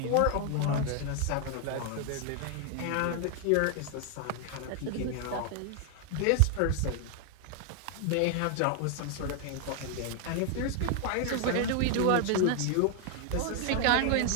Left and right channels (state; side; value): different; both; correlation 0.00